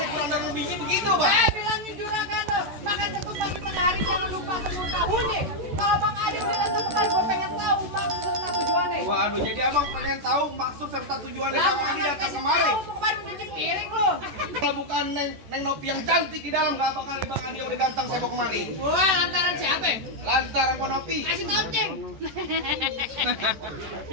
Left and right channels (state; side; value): late; left; 14 ms